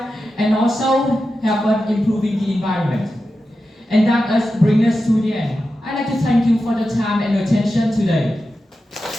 and also help us improving the environment. And that brings us to the end. I'd like to thank you for the time and attention today.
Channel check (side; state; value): both; normal; correlation 0.91